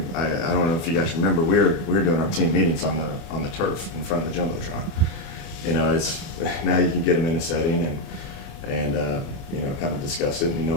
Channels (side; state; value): right; late; 36 ms